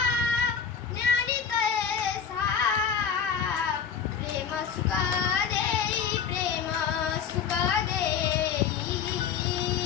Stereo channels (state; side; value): quieter; right; 7.2 dB